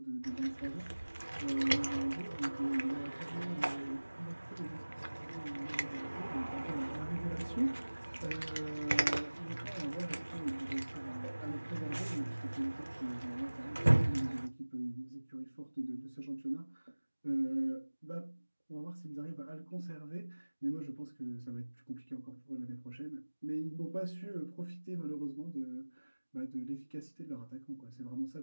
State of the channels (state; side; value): inverted; both; correlation -1.00